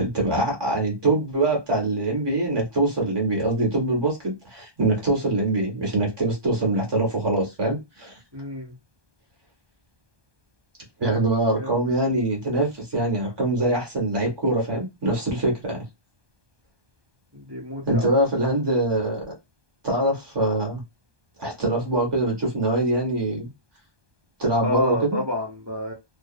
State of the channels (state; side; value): late; left; 1.2 ms